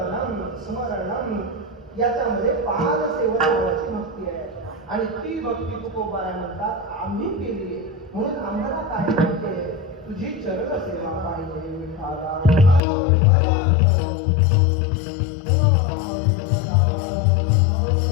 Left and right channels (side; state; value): right; drops out; at 12.8 s